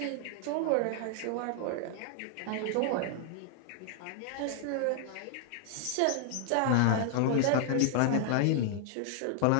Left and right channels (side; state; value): both; different; correlation 0.00